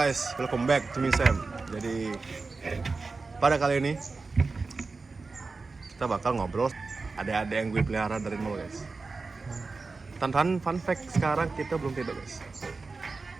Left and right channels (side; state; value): left; quieter; 4.0 dB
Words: welcome back to me Sam. Jadi pada kali ini kita bakal ngobrol ada yang gue pelihara dari nol guys. Tantan fun fact, sekarang kita belum tidur guys.